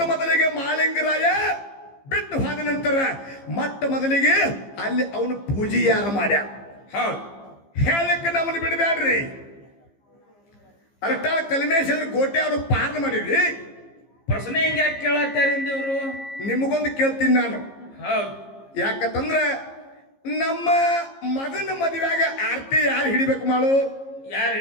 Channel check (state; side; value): late; right; 15 ms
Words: ಮೊದಲಿಗೆ ಮಾಳಿಂಗರಾಯ ಬಿಟ್ಟು ಹೋದ ನಂತರ ಮೊಟ್ಟ ಮೊದಲಿಗೆ ಅಲ್ಲಿ ಅವನು ಪೂಜೆ ಯಾರು ಮಾಡ್ಯ. ಹೌದು. ಹೇಳಕ್ಕೆ ನಮ್ಮನ್ನು ಬಿಡಬ್ಯಾಡ್ರಿ. ಅರಟಾಳ ಕಲ್ಮೇಶ್ವರ ಕೋಟೆ ಅವರು ಪಾರ್ನ ಮಾಡಿದ್ರಿ. ಪ್ರಶ್ನೆ ಹಿಂಗೆ ಯಾಕೆ ಕೇಳತ್ತಾರಿಂದ ಇವರು? ನಿಮಗೊಂದು ಕೇಳ್ತೀನಿ ನಾನು. ಹೌದು. ಯಾಕಂದ್ರೆ ನಮ್ಮ ಮಗನ ಮದುವೆಯಾಗ ಆರ್ತಿ ಯಾರು ಹಿಡಿಬೇಕು ಮಾಡು? ಯಾರು